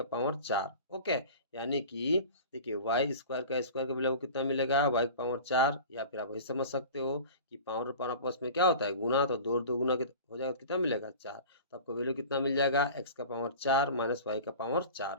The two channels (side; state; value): both; inverted; correlation -0.38